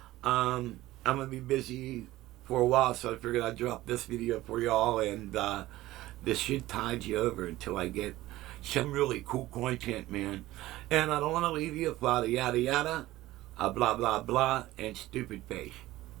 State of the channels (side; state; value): left; quieter; 16.6 dB